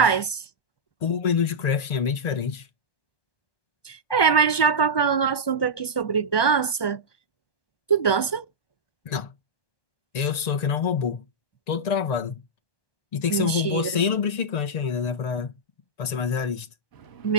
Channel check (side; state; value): right; late; 1.1 ms